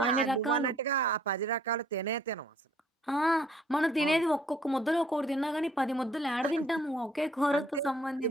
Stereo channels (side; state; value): both; normal; correlation 0.61